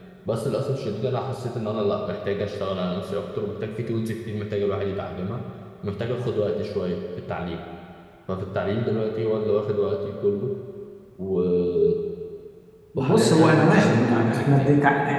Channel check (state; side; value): identical; both; correlation 1.00